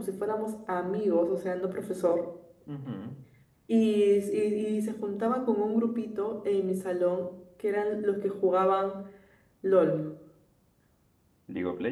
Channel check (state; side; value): identical; both; correlation 1.00